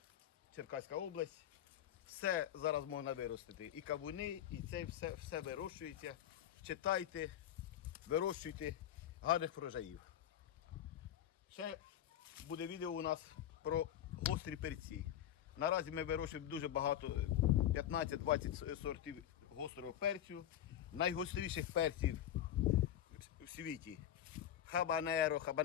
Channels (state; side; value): quieter; right; 11.0 dB